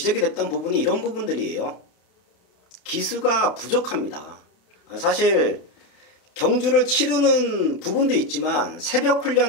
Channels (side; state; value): right; late; 31 ms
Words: 됐던 부분이 이런 부분들이에요. 기수가 부족합니다. 사실 경주를 치르는 부분도 있지만 새벽